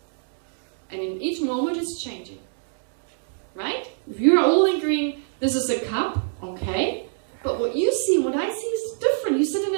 And in each moment it's changing. Right? If you're all agreeing this is a cup, okay, but what you see, what I see is different. You sit in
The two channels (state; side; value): silent; left; digital silence